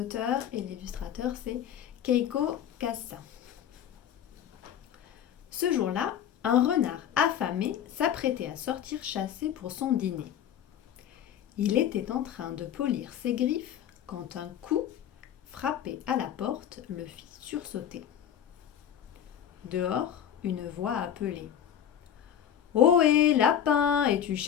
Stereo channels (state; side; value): quieter; right; 9.6 dB